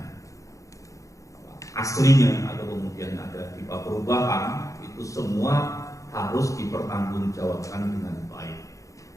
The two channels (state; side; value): late; right; 0.16 ms